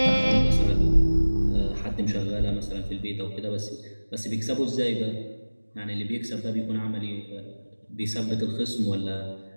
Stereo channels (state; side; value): inverted; both; correlation -1.00